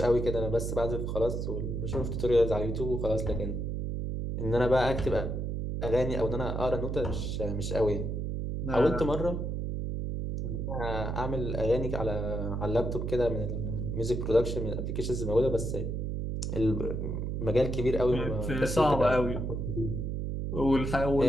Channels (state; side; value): noise; right; hum, 2 dB below the sound